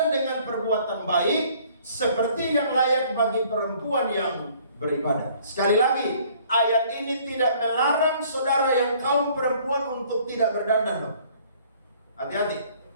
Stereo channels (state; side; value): inverted; both; correlation -0.57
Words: dengan perbuatan baik, seperti yang layak bagi perempuan yang beribadah. Sekali lagi, ayat ini tidak melarang saudara yang kaum perempuan untuk tidak berdandan loh. Hati-hati.